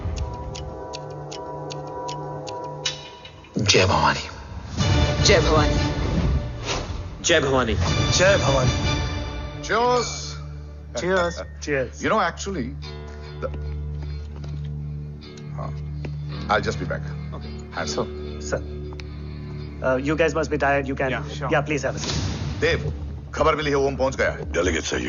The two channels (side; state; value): both; identical; correlation 1.00